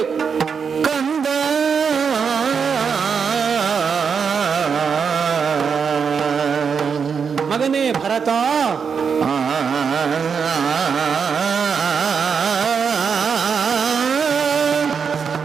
ಕಂದ. ಮಗನೇ ಭರತ,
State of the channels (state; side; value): quieter; left; 6.3 dB